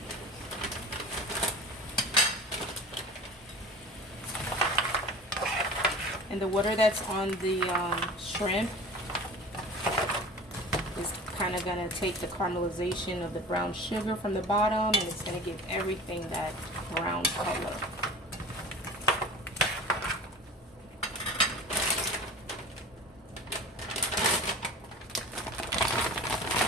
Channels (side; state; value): both; normal; correlation 0.38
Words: And the water that's on the shrimp is kind of going to take the caramelization of the brown sugar from the bottom, and it's going to give everything that brown color.